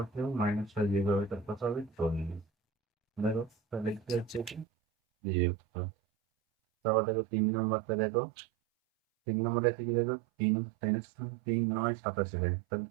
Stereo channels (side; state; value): left; drops out; at 4.7 s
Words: কেউ -6 যেভাবে তার কথা হবে 40। দেখো তাহলে কি হচ্ছে কি, বিয়োগ করো। তারপর দেখো 3 নম্বরটা দেখো, 3 নম্বরে আছে কি দেখো, 3 3 9 87, তাহলে